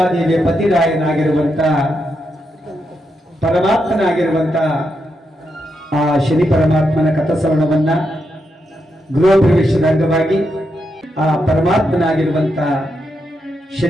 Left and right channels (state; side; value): normal; both; correlation 0.83